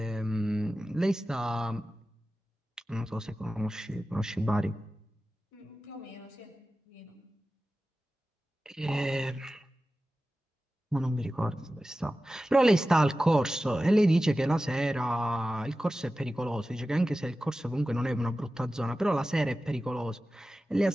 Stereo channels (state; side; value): normal; both; correlation 0.95